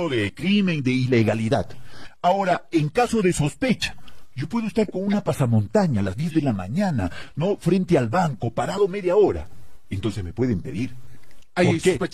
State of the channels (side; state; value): both; identical; correlation 1.00